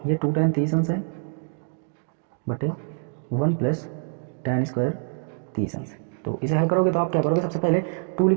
ये 2tan 30 अंश है बटे 1 + tan² 30 अंश। तो इसे हल करोगे तो आप क्या करोगे, सबसे पहले 2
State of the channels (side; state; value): left; silent; 56 dB below the other